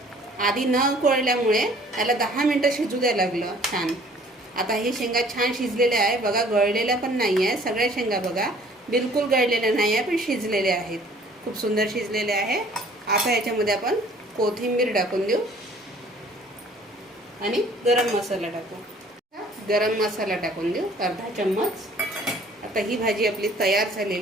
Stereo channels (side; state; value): both; normal; correlation 0.54